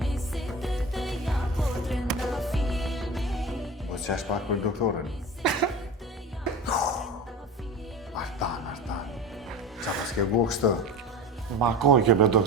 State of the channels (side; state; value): both; normal; correlation 0.31